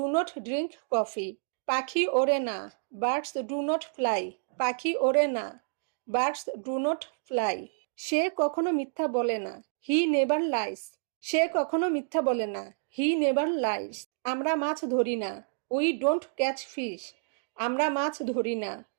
not drink coffee? পাখি ওড়ে না। Birds do not fly? পাখি ওড়ে না। Birds do not fly? সে কখনো মিথ্যা বলে না। He never lines? সে কখনো মিথ্যা বলে না। He never lies? আমরা মাছ ধরি না। We don't catch fish? আমরা মাছ ধরি না।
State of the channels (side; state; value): left; silent; digital silence